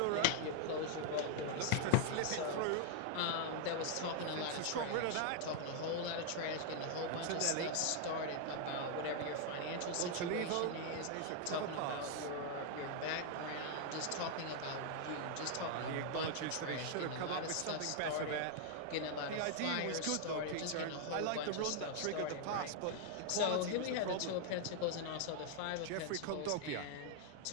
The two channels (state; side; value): different; both; correlation 0.00